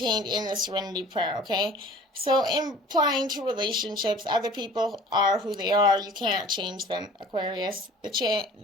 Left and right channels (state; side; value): normal; both; correlation 0.47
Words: in the Serenity Prayer, okay? So, implying to relationships, other people are who they are. You can't change them, Aquarius. The